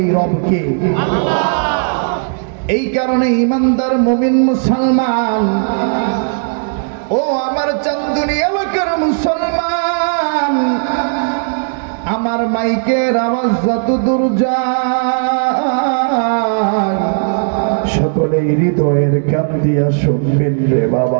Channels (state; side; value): silent; left; digital silence